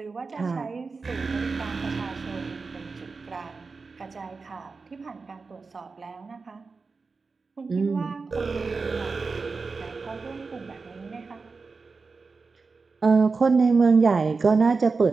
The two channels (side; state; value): left; quieter; 4.4 dB